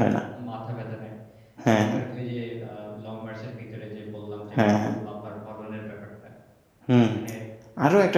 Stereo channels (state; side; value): identical; both; correlation 1.00